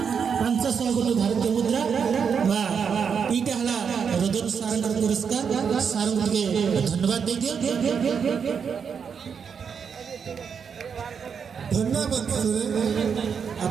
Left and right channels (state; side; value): quieter; left; 6.6 dB